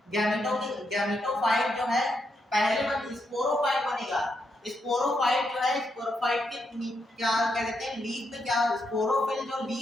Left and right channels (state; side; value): normal; both; correlation 0.81